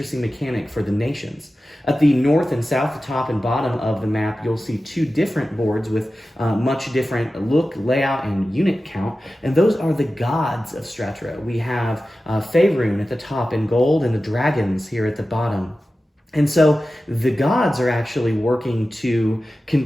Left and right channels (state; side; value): normal; both; correlation 0.94